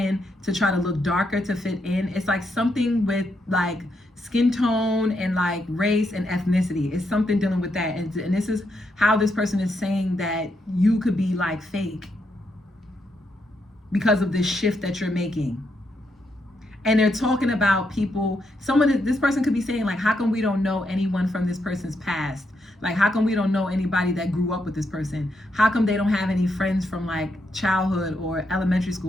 to try to look darker to fit in. It's like something with like skin tone and like race and ethnicity. It's something dealing with that. And this is how this person is saying that you could be like fake because of this shift that you're making. And they're talking about people, this person could be saying like, how come we don't know anyone from this person's past? Like, how come we don't know anybody that grew up with this person? How come they don't have any friends from like childhood or elementary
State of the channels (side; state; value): both; normal; correlation 0.80